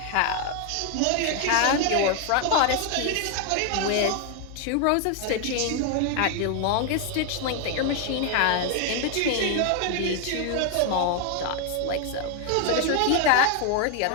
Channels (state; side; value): different; both; correlation 0.00